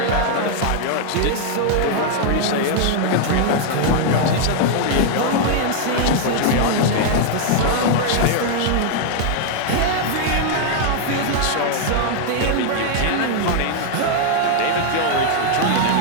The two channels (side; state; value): both; different; correlation 0.00